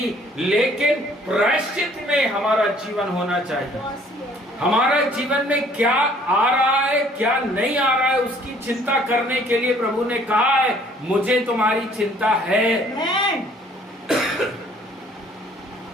लेकिन प्रायश्चित में हमारा जीवन होना चाहिए। हमारा जीवन में क्या आ रहा है, क्या नहीं आ रहा है, उसकी चिंता करने के लिए प्रभु ने कहा है, मुझे तुम्हारी चिंता है।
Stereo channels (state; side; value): normal; both; correlation 0.58